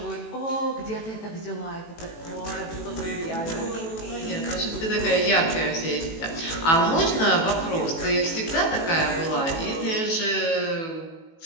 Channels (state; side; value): late; right; 18 ms